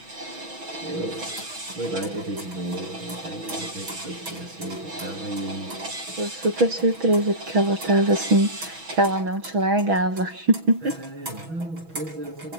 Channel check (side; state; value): left; late; 6.1 ms